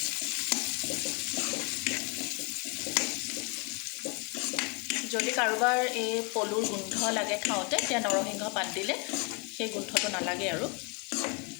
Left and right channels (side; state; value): right; quieter; 33.1 dB